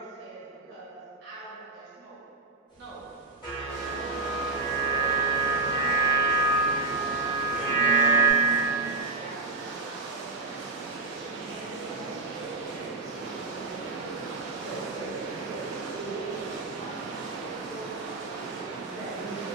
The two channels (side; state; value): left; quieter; 3.3 dB